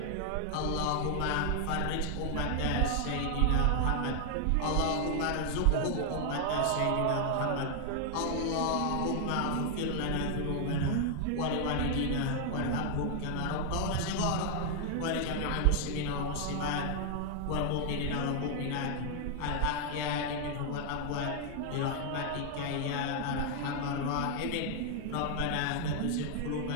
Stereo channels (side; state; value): both; different; correlation 0.00